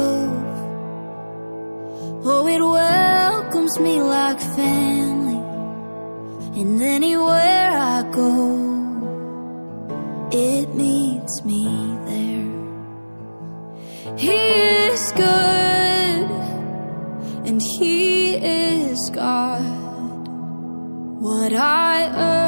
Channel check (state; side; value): inverted; both; correlation -1.00